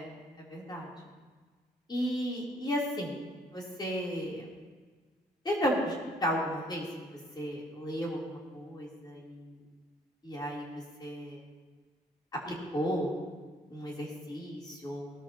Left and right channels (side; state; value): both; normal; correlation 0.63